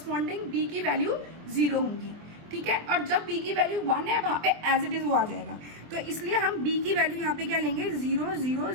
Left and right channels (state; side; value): late; left; 24 ms